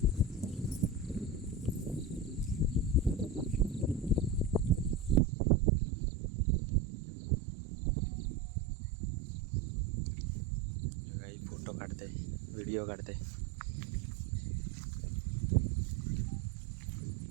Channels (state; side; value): drops out; left; at 5.2 s